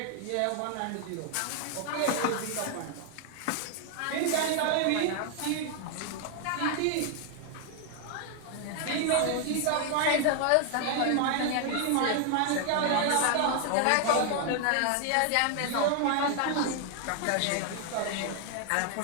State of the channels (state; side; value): different; both; correlation 0.00